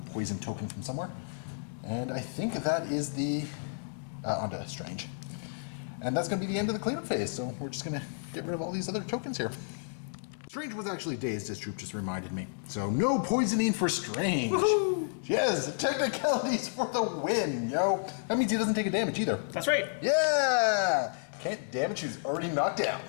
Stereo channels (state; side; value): silent; right; digital silence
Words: token from somewhere. And I think that is the... onto Strange. And that's going to be the end of the cleanup phase, so we're just going to get rid of all these other tokens here. Strange was actually dazed, as Troop just reminded me. So no poisoning for Strange. Woohoo! Yes, technicalities for the win, yo. That means he doesn't take a damage either. That's right. Yeah! Can't damage who's already knocked